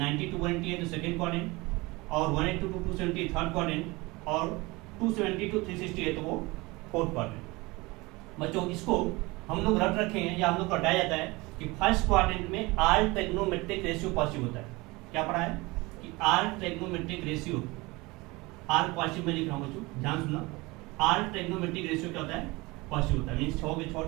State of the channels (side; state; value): left; quieter; 23.4 dB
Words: to 180 है तो सेकेंड क्वाड्रेंट, और 180 to 270 थर्ड क्वाड्रेंट, और 270 to 360 है तो वो फोर्थ क्वाड्रेंट। बच्चों इसको हम लोग रट रखे हैं, या हम लोग को हटाया जाता है कि फर्स्ट क्वाड्रेंट में आर ट्रिग्नोमेट्रिक रेशियो पॉजिटिव होता है। क्या पढ़ा है कि all trigonometric ratio, all positive में लिख रहा हूं बच्चों, ध्यान सुनना, आर ट्रिग्नोमेट्रिक रेशियो क्या होता है, पॉजिटिव होता है। मींस 6 के 6